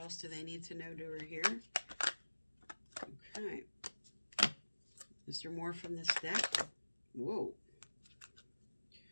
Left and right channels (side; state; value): both; inverted; correlation -1.00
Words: do they need to know, do, or hear? Okay. Is there more from this deck? Whoa.